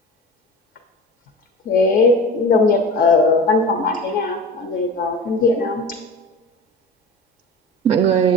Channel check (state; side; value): normal; both; correlation 0.33